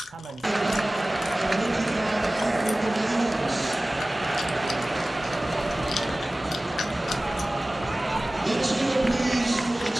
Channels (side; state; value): both; normal; correlation 0.98